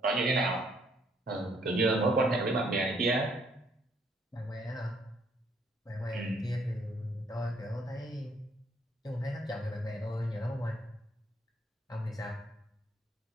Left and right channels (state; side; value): normal; both; correlation 0.68